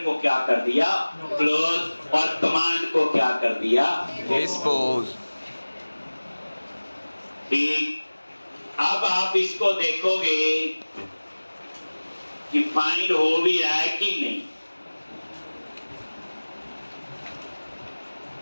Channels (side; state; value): both; inverted; correlation -1.00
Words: को क्या कर दिया, क्लोज, और कमांड को क्या कर दिया, डिस्पोज। ठीक, अब आप इसको देखोगे कि फाइंड हो भी रहा है कि नहीं।